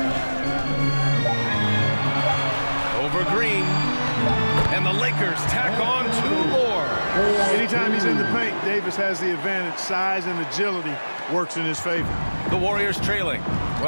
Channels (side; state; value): both; inverted; correlation -1.00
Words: Over Green. And the Lakers tack on 2 more. Anytime he's in the paint, Davis has the advantage. Size and agility works in his favor. The Warriors trailing.